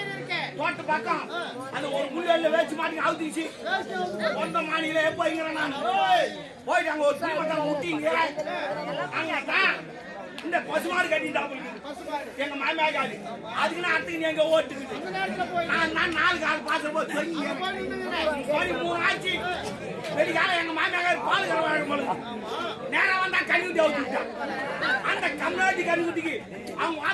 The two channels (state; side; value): identical; both; correlation 1.00